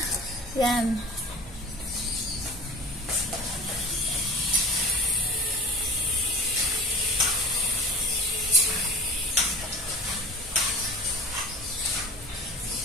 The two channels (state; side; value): normal; both; correlation 0.36